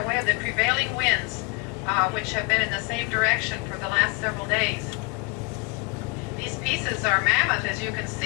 way of the prevailing winds, which have been in the same direction for the last several days. These pieces are mammoth, as you can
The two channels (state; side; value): quieter; right; 28.0 dB